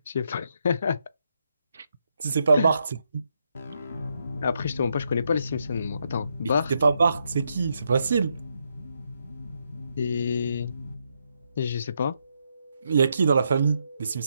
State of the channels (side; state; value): both; inverted; correlation -0.80